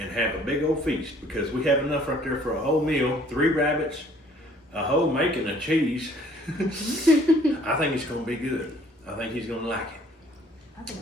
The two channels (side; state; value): both; normal; correlation 0.58